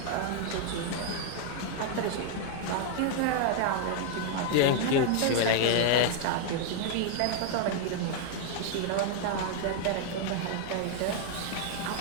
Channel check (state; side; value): different; both; correlation 0.00